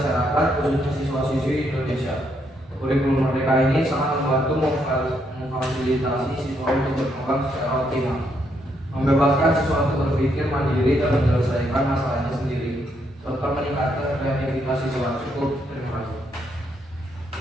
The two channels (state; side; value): normal; both; correlation 0.75